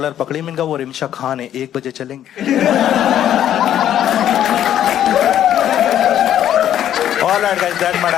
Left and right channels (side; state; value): right; quieter; 10.9 dB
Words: पकड़ी, मैंने कहा वो रिमशा खान है, 1 बजे चलेंगे। All right guys, that's my